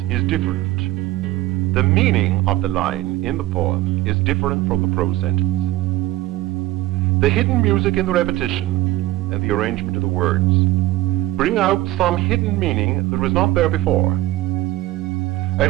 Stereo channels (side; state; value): left; quieter; 16.8 dB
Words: is different, the meaning of the line in the poem is different from the prose sentence. The hidden music in the repetition and the arrangement of the words bring out some hidden meaning that was not there before.